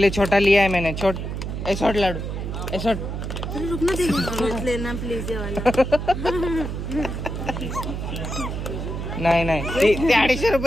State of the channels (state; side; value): noise; right; hum, 5 dB below the sound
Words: छोटा लिया है मैंने। छोट लाडू रुकना देखो लेना प्लीज ये वाला। नाही ते 250